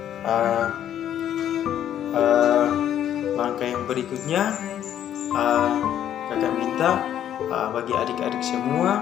langkah yang berikutnya kakak minta bagi adik-adik semua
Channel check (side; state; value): right; quieter; 10.5 dB